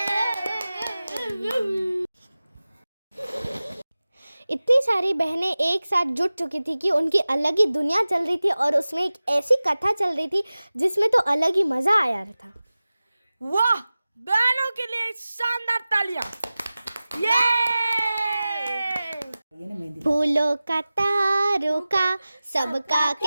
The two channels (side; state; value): both; inverted; correlation -0.97